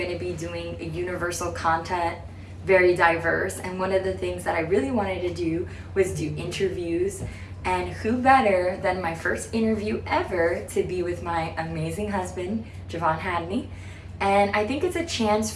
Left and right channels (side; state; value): both; identical; correlation 1.00